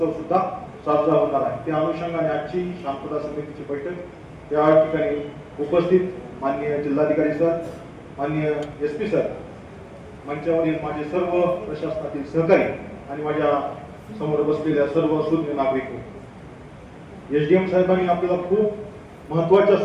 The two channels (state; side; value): identical; both; correlation 1.00